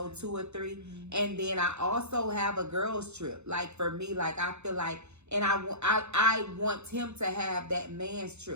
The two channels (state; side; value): late; left; 0.81 ms